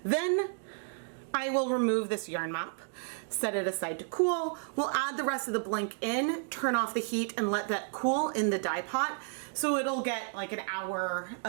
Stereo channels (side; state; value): left; silent; 56 dB below the other